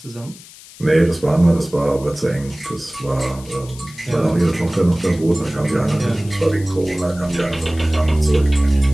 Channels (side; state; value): left; noise; hiss, 20 dB below the sound